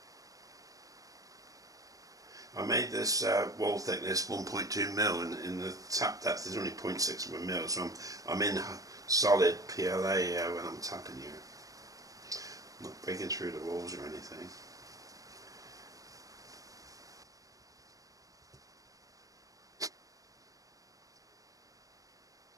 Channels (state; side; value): late; left; 0.17 ms